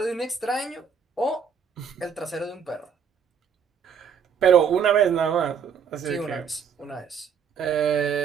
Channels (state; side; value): quieter; left; 6.9 dB